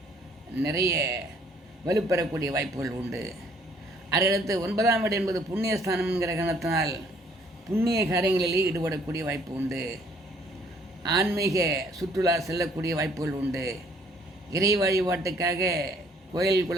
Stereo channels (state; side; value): normal; both; correlation 0.61